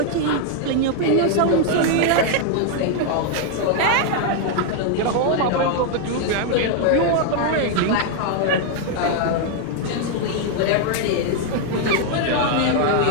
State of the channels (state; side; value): different; both; correlation 0.00